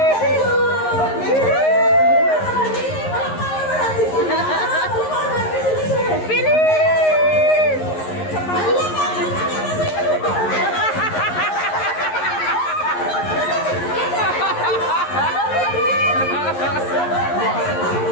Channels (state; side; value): late; right; 11 ms